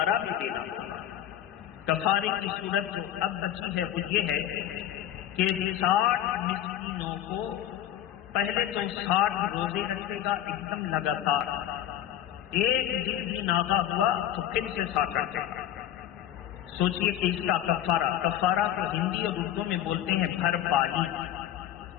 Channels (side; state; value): right; quieter; 11.5 dB